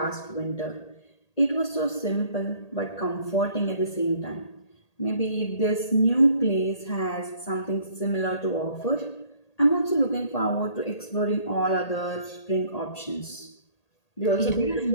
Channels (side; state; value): right; late; 1.8 ms